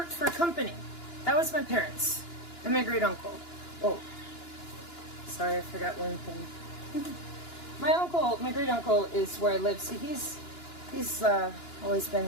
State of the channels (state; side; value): late; right; 2.9 ms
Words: for a company. That was my parents and my great uncle. Oh, sorry, I forgot one thing. My great uncle is where I live. See, he's always